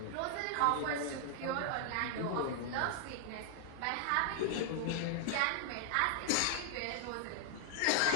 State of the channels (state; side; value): different; both; correlation 0.00